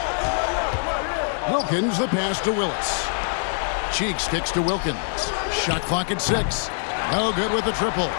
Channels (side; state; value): right; silent; 63 dB below the other